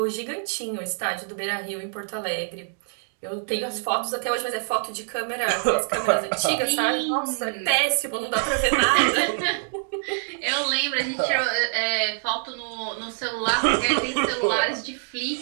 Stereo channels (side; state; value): left; silent; 62 dB below the other